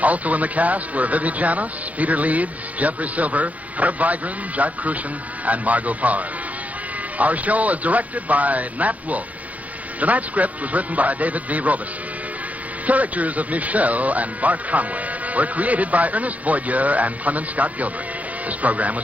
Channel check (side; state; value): left; late; 0.072 ms